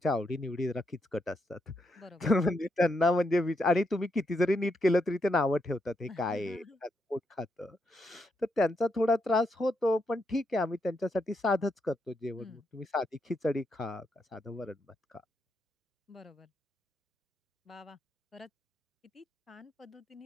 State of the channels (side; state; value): both; normal; correlation 0.80